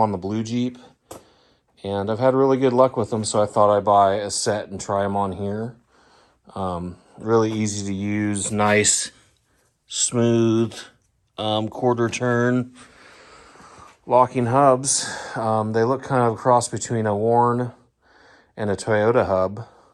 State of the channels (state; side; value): identical; both; correlation 1.00